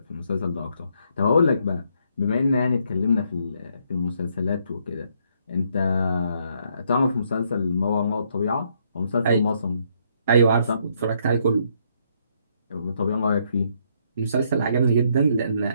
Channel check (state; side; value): inverted; both; correlation -0.72